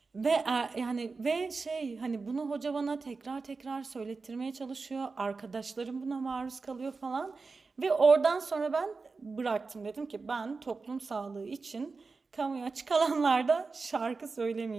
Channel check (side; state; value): left; quieter; 4.3 dB